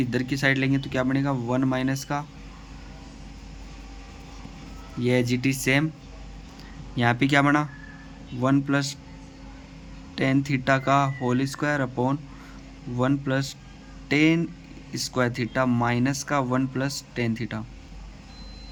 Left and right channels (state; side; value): identical; both; correlation 1.00